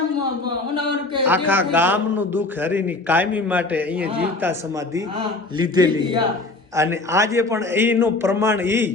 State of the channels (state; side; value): quieter; right; 3.1 dB